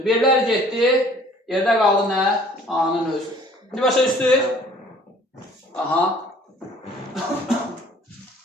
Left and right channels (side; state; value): both; normal; correlation 0.54